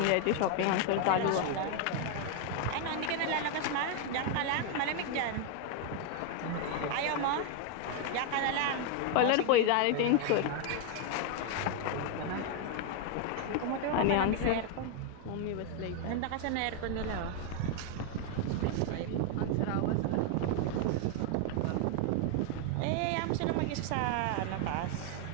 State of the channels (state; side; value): different; both; correlation 0.00